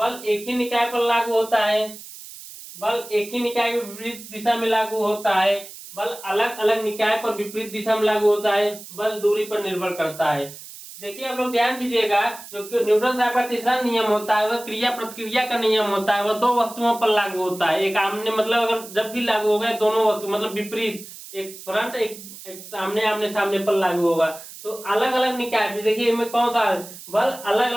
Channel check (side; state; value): right; noise; hiss, 15 dB below the sound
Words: एक ही निकाय पर लागू होता है, बल एक ही निकाय में विपरीत दिशा में लागू होता है, बल अलग अलग निकाय पर विपरीत दिशा में लागू होता है, बल दूरी पर निर्भर करता है। देखिए आप लोग ध्यान दीजिएगा, जो न्यूटन साहब का तीसरा नियम होता है वह क्रिया प्रतिक्रिया का नियम होता है, वह दो वस्तुओं पर लागू होता है। एक आमने मतलब अगर जब भी लागू हो गए दोनों वस्तु मतलब विपरीत, एक फ्रंट एक सामने आमने सामने पर लागू होगा। तो अलग अलग निकाय भी देखिए इनमें कौन सा बल अलग